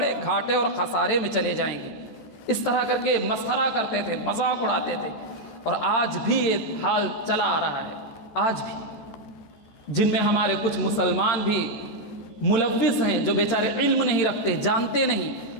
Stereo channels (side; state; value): right; late; 14 ms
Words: گھاٹے اور خسارے میں چلے جائیں گے۔ اس طرح کر کے مسخرہ کرتے تھے، مذاق اڑاتے تھے۔ اور آج بھی یہ حال چلا آ رہا ہے، آج بھی جن میں ہمارے کچھ مسلمان بھی ملوث ہیں، جو بیچارے علم نہیں رکھتے، جانتے نہیں،